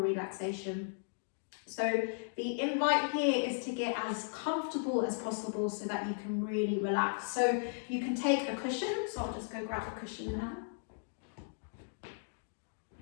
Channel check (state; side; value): silent; right; digital silence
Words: So the invite here is to get as comfortable as possible so that you can really relax. So you can take a cushion, so I'll just go grab a cushion now.